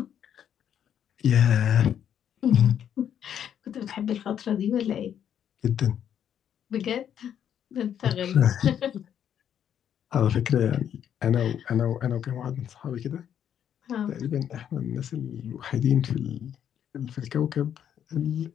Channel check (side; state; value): right; quieter; 9.4 dB